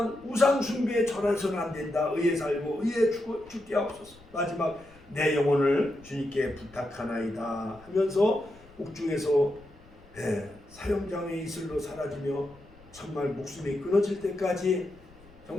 우상 숭배에 절해서는 안 된다. 의에 살고 의에 죽게 하옵소서. 마지막 내 영혼을 주님께 부탁하나이다 하면서 옥중에서 사형장의 이슬로 사라지며 정말 목숨이 끊어질 때까지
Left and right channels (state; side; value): noise; left; rumble, 24 dB below the sound